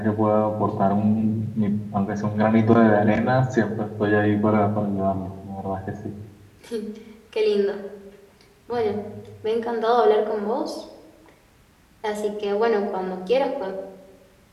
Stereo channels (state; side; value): identical; both; correlation 1.00